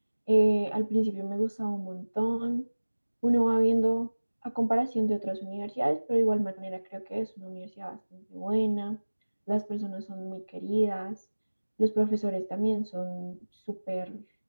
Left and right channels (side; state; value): both; inverted; correlation -1.00